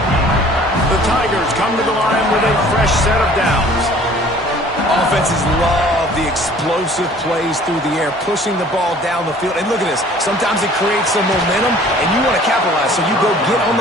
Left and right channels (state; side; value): normal; both; correlation 0.51